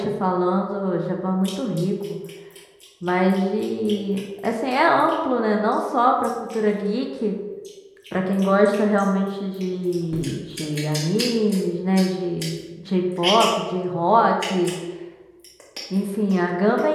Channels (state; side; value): identical; both; correlation 1.00